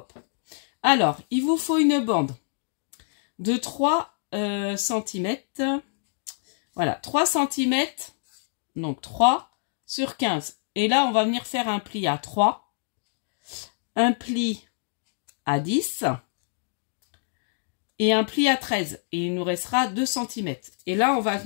Alors, il vous faut une bande de 3 cm. Voilà, 3 cm, donc 3 sur 15. Et là, on va venir faire un pli à 3, un pli à 10 et un pli à 13. Et il nous restera 2 cm. Et là, on va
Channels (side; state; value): right; silent; digital silence